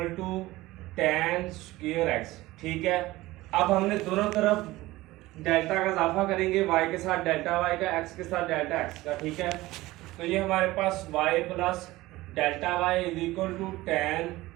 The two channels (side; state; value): left; quieter; 18.4 dB